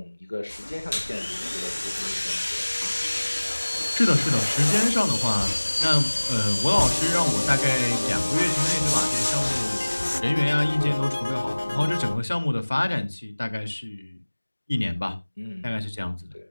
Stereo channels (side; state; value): both; inverted; correlation -1.00